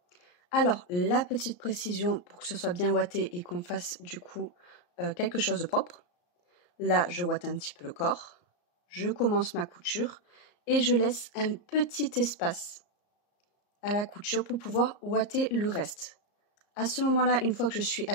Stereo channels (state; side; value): late; right; 34 ms